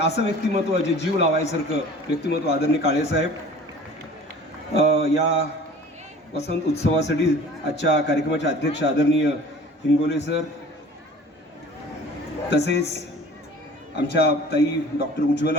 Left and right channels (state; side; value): normal; both; correlation 0.45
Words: असं व्यक्तिमत्व जे जीव लावायसारखं व्यक्तिमत्व आदरणीय काळेसाहेब. या वसंत उत्सवासाठी आजच्या कार्यक्रमाचे अध्यक्ष आदरणीय हिंगोले सर, तसेच आमच्या ताई डॉक्टर